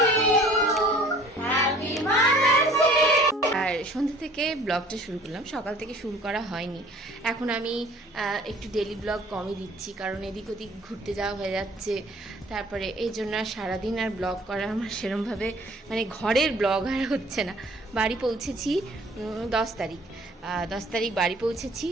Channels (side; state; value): both; normal; correlation 0.52